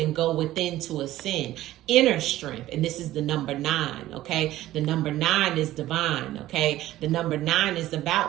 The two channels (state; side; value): quieter; left; 14.9 dB